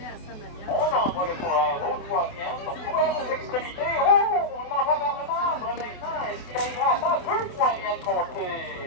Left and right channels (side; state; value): right; late; 28 ms